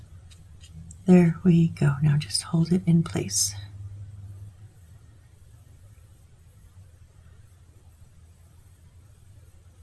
There we go. Now just hold it in place.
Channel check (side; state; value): both; identical; correlation 1.00